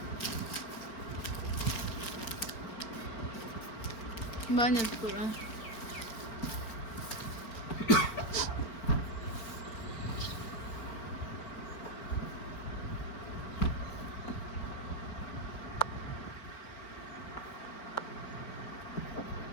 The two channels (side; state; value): right; late; 4.4 ms